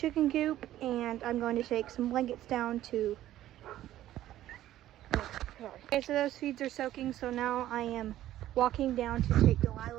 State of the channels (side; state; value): left; quieter; 13.4 dB